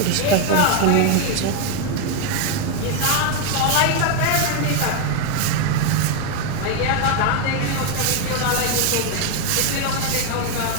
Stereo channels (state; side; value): different; both; correlation 0.01